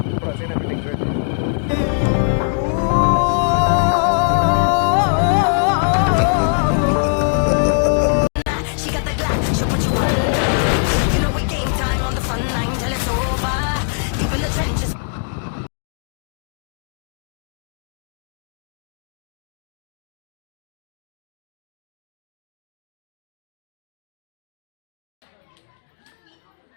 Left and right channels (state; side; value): silent; right; digital silence